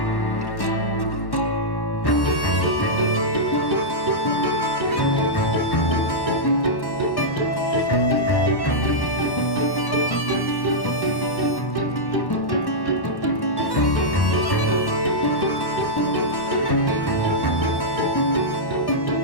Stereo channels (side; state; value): right; late; 1.1 ms